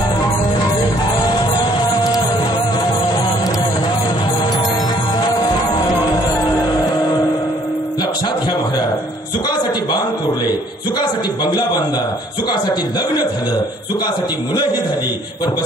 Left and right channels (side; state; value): both; normal; correlation 0.61